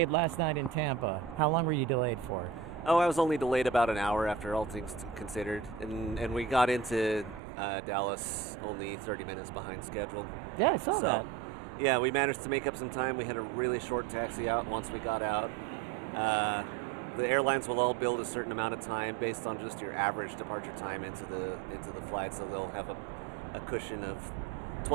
last night in Tampa? How long were you delayed for? Oh, I was only delayed about an hour after all things considered. And we got into Dallas only 30 minutes behind schedule. Yeah, I saw that. Yeah, we managed to make up some time. We had a really short taxi out once we got out. The airlines will all build a certain amount of time based on just your average departure time into the flight, so they'll have a cushion of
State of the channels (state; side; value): drops out; left; at 7.4 s